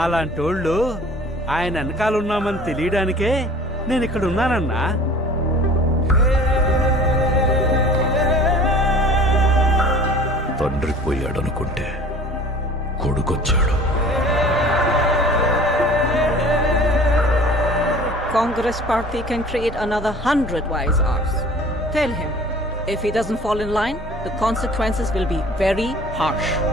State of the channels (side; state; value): both; normal; correlation 0.46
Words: ఆయన వెనకాలన్నామని తెలియడానికే నేను ఇక్కడ ఉన్నానన్నా. తండ్రి పోయాడనుకుంటే కొడుకొచ్చాడు. Congress party can create another 100 wise hours. Tell him, if he doesn't fall in line, the consequences will be very harsh.